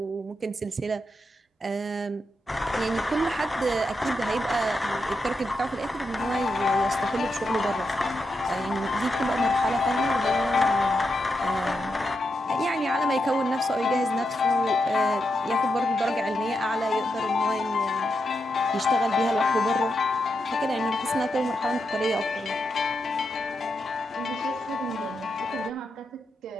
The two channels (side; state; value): both; normal; correlation 0.85